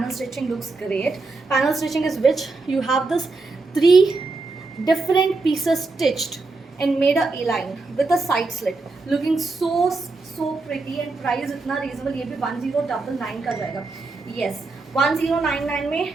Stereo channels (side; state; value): left; quieter; 3.6 dB